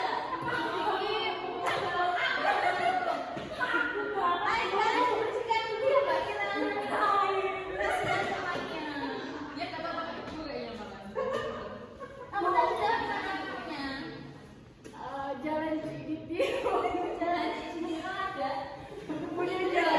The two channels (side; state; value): both; identical; correlation 1.00